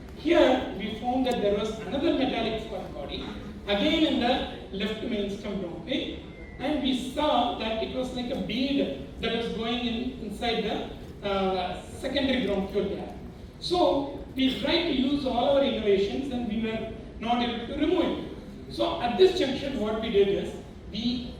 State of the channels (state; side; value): identical; both; correlation 1.00